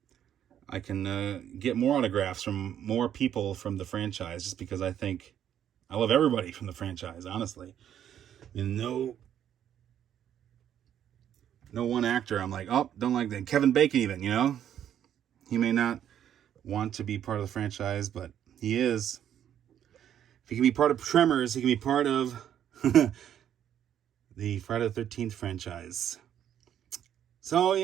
I can get more autographs from more people from the franchise, just because I love everybody from the franchise, honestly. And no one actor I'm like, oh, don't like that. Kevin Bacon even, you know? He may not want to be part of the franchise, but he is. If he can be part of Tremors, he can be part of the Friday the 13th franchise. So,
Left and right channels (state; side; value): quieter; left; 10.0 dB